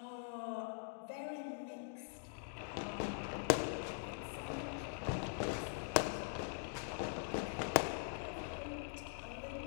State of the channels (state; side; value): silent; right; digital silence